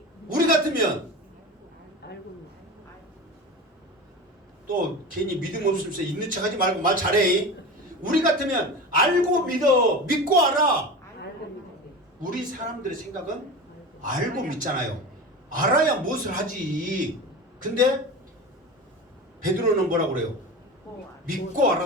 우리 같으면 또 괜히 믿음 없으면서 있는 척하지 말고 말 잘해. 우리 같으면 알고 믿어. 믿고 알아. 우리 사람들의 생각은 알고 믿잖아요. 알아야 무엇을 하지. 근데 베드로는 뭐라고 그래요? 믿고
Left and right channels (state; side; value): normal; both; correlation 0.29